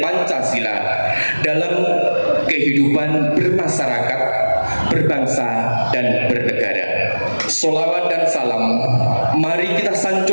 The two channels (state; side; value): inverted; both; correlation -1.00